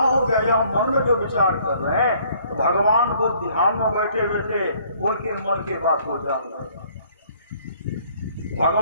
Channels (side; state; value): both; inverted; correlation -0.60